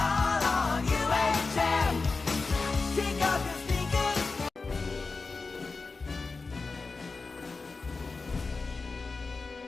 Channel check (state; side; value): quieter; right; 4.1 dB